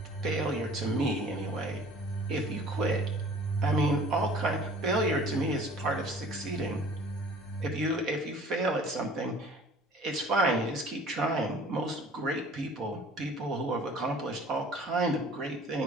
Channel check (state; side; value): normal; both; correlation 0.49